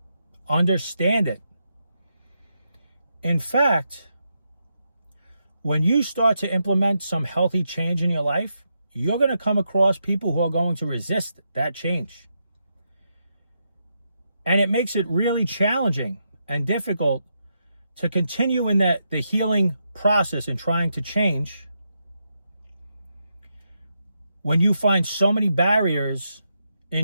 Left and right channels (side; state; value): both; inverted; correlation -0.83